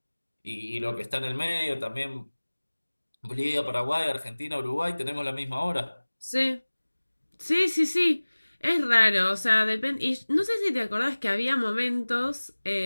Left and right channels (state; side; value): inverted; both; correlation -1.00